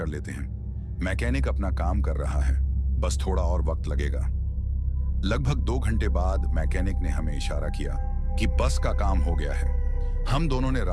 लेते हैं, मैकेनिक अपना काम कर रहा है, बस थोड़ा और वक्त लगेगा। लगभग 2 घंटे बाद मैकेनिक ने हमें इशारा किया कि बस का काम हो गया है। हम दोनों ने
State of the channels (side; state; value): both; identical; correlation 1.00